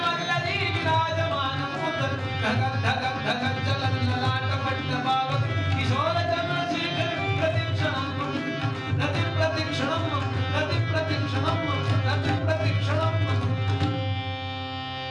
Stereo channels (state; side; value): identical; both; correlation 1.00